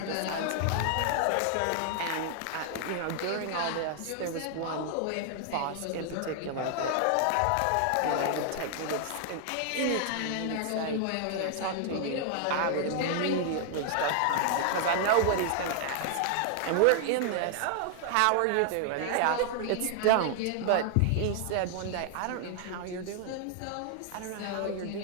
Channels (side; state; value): both; different; correlation 0.00